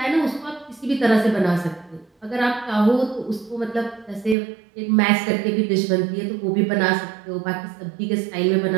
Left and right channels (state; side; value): drops out; left; at 4.4 s